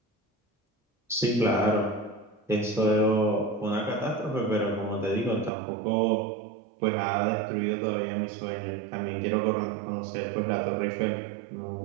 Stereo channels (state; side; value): drops out; left; at 5.5 s